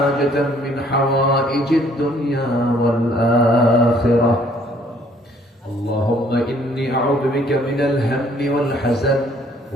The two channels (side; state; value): both; normal; correlation 0.62